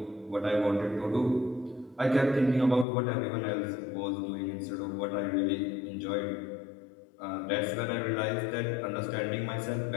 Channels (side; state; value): right; drops out; at 2.9 s